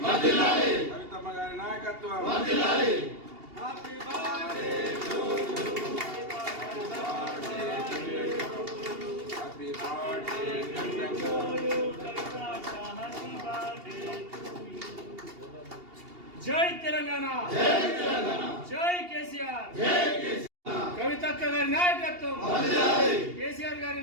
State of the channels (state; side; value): late; left; 2.8 ms